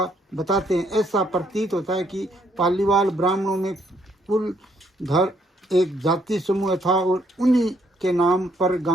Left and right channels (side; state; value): both; normal; correlation 0.70